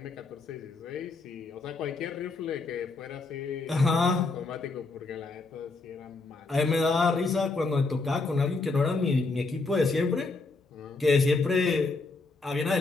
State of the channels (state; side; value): quieter; right; 3.7 dB